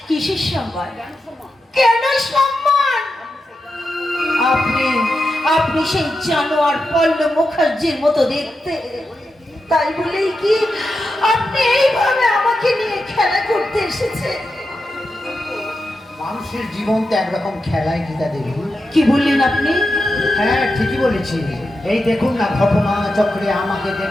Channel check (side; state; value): both; normal; correlation 0.89